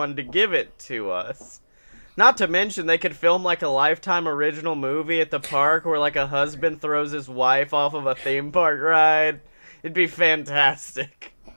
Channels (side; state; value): both; inverted; correlation -1.00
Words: to give it to us. Not to mention, they could film, like, a Lifetime original movie at the park where, like, a husband throws his wife off of a theme park ride. It'd be fantastic.